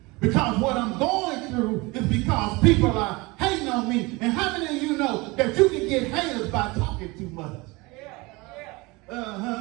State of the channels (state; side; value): quieter; left; 24.3 dB